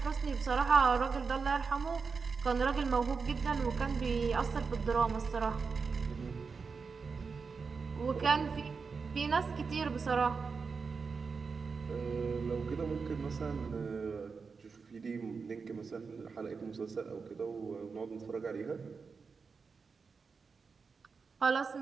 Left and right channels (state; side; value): quieter; left; 5.1 dB